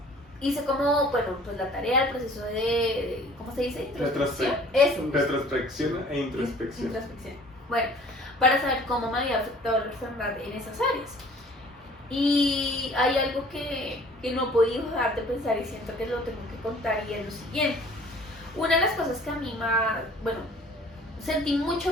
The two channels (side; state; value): both; normal; correlation 0.51